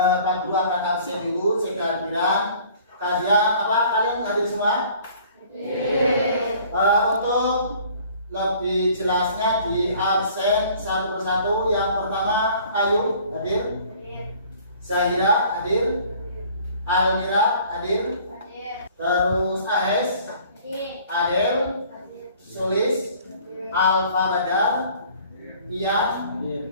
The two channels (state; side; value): inverted; both; correlation -0.53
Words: Guru akan absen dulu sekalian. Kalian hadir semua? Untuk lebih jelasnya di absen satu persatu. Yang pertama Ayu hadir, Zahira hadir, Almira hadir, terus Ahes, Adel, Sulis, Alfa Badar, Iya,